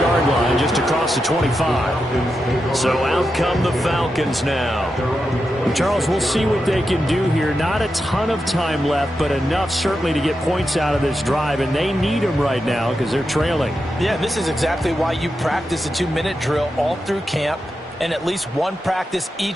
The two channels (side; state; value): both; normal; correlation 0.88